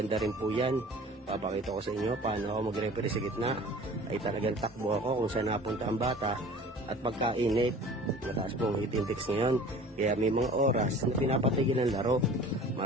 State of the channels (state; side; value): normal; both; correlation 0.44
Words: rin po yan. Papakita ko sa inyo paano ako mag-referee sa gitna. Ay talagang takbo ako kung saan napunta ang bata. At pagkainit, mataas po ang heat index ngayon. Kaya may mga oras na pinapatigil ng laro.